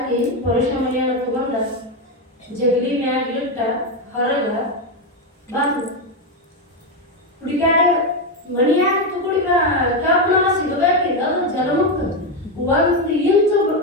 ಪುರುಷ ಮನೆಯನ್ನು ತಗೊಂಡ ಜಗಲಿ ಮ್ಯಾಗ ಇಟ್ಟ ಹೊರಗ ಬಂದು ಹುಡುಗಾಡ ಮನೆಯಾಗ ತುಗುಡಿ ಕಬ್ಬನ ಸಿಗಬೇಕಿಲ್ಲ, ಅದು ಜಲಮುಕ್ತ 1 ಇಂಚು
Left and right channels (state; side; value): normal; both; correlation 0.09